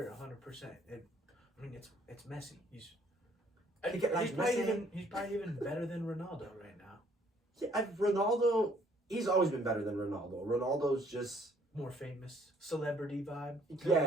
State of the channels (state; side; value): normal; both; correlation 0.62